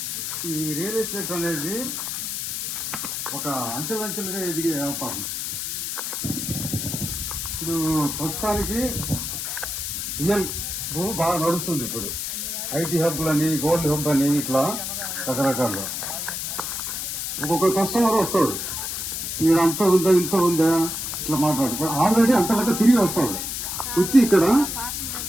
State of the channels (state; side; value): noise; left; hiss, 4 dB below the sound